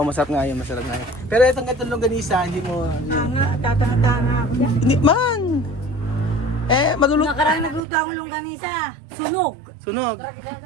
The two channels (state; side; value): drops out; left; at 7.8 s